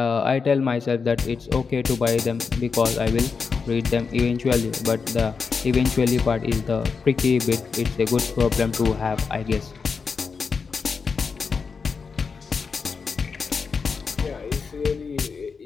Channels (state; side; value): quieter; right; 5.3 dB